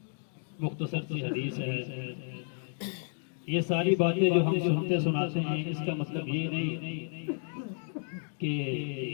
مختصر سی حدیث ہے۔ یہ ساری باتیں جو ہم سنتے سناتے ہیں اس کا مطلب یہ نہیں کہ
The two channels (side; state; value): right; silent; 57 dB below the other